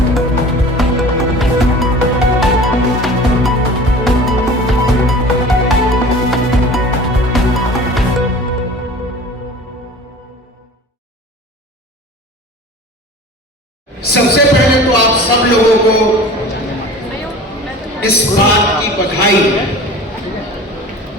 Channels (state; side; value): normal; both; correlation 0.41